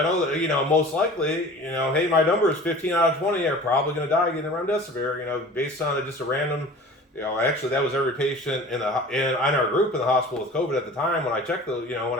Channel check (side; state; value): both; normal; correlation 0.42